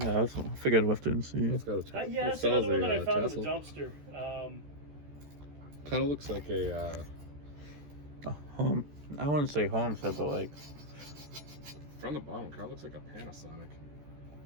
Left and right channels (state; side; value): late; left; 14 ms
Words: Yeah, I figured I'd have to see. It's got a Yeah, that's another one that I found in the dumpster. Kind of looks like a home. I wouldn't say homestead, but like. from the bottom. Kind of looks like a Panasonic.